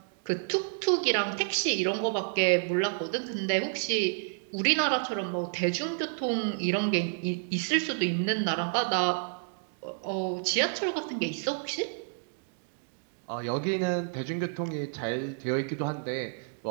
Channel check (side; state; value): left; silent; digital silence